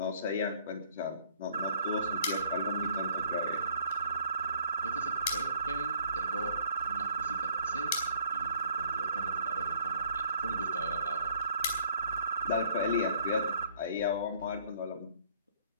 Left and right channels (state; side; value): inverted; both; correlation -0.58